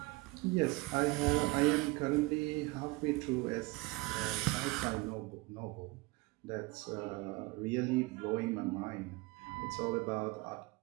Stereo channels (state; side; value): quieter; left; 23.3 dB